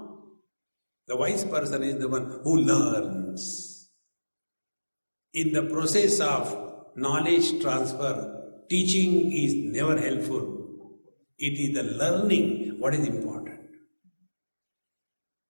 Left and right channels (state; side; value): inverted; both; correlation -1.00